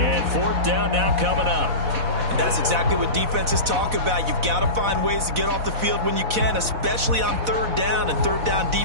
4th down now coming up. And that's exactly what defenses talk about. You've got to find ways to get off the field when you can, especially on 3rd down. And 3rd down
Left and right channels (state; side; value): late; left; 4.0 ms